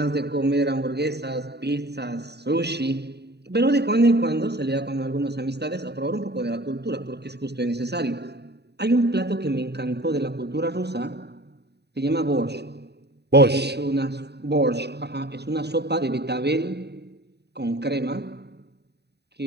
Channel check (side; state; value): left; late; 0.48 ms